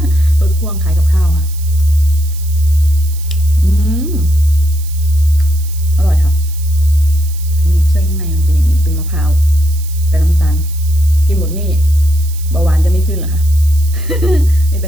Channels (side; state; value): right; noise; hiss, 17 dB below the sound